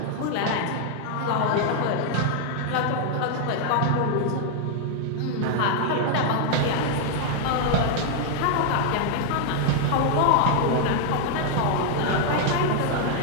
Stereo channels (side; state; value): both; different; correlation 0.00